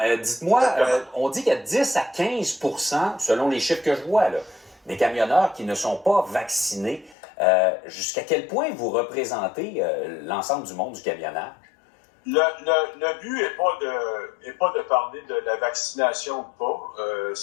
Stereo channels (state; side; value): drops out; right; at 7.2 s